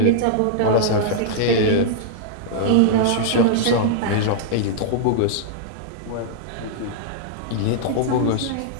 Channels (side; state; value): both; different; correlation -0.02